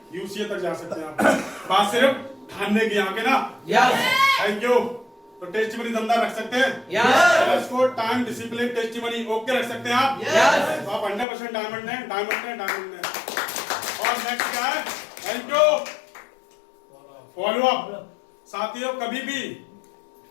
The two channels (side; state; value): right; drops out; at 11.2 s